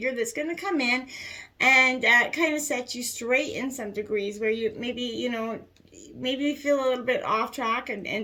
that's going to come in and kind of set you straight in some degrees where you maybe, you know, maybe you feel a little bit off track,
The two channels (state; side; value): identical; both; correlation 1.00